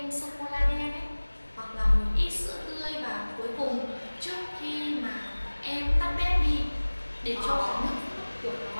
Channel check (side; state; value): both; inverted; correlation -1.00